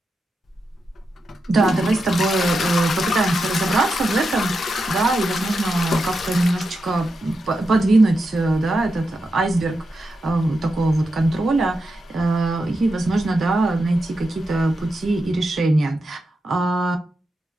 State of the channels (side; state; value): both; normal; correlation 0.87